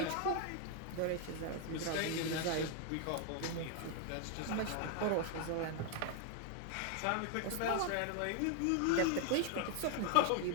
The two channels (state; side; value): different; both; correlation 0.00